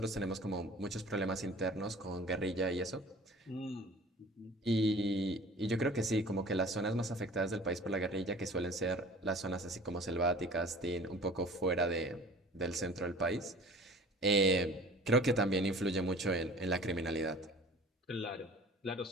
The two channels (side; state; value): both; normal; correlation 0.45